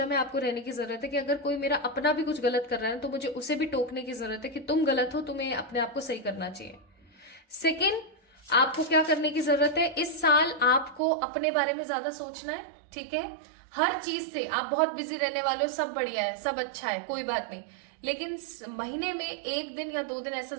में आपको रहने की जरूरत है कि अगर कोई मेरा अपना भी कुछ गलत कर रहा है तो मुझे उसे भी टोकने की जरूरत है कि तुम गलत हो, तुम्हें अपने आप को सही करना चाहिए। सेकेंड, आपको क्या करने की जरूरत है, इस साल आपको अपने बारे में ज्यादा सोचना है। ठीक है, हर चीज से आप बहुत बिजी रहने वाले हो, सब बढ़िया है, सब अच्छा है, कोई बात नहीं, लेकिन महीने में 1 दिन या 2 दिन ऐसा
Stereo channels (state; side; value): drops out; left; at 11.0 s